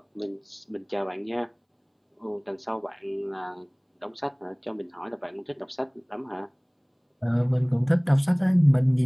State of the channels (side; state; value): both; identical; correlation 1.00